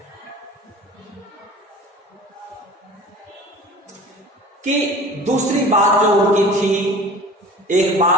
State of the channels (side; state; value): both; normal; correlation 0.42